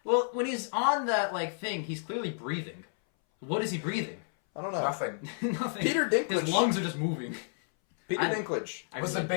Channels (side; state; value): right; silent; 57 dB below the other